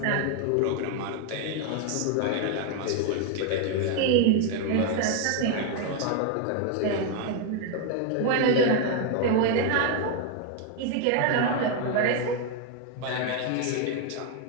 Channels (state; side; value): different; both; correlation 0.01